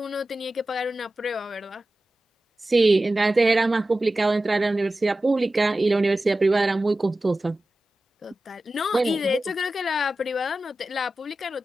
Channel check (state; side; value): normal; both; correlation 0.94